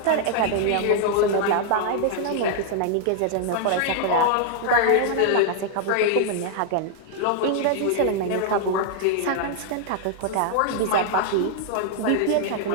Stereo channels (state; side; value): different; both; correlation 0.00